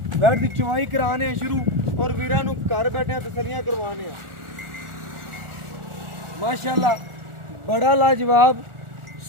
वैड़ की चुवाई कराने शुरू और वीरां नूं घर बैठे तसलियां करवाने माशाअल्लाह। बड़ा लाजवाब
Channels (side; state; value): left; late; 1.4 ms